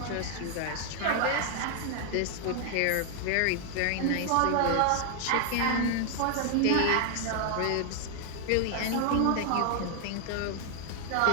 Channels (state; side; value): different; both; correlation 0.00